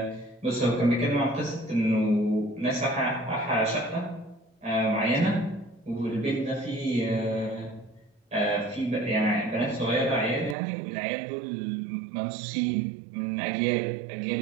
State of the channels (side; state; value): left; drops out; at 10.6 s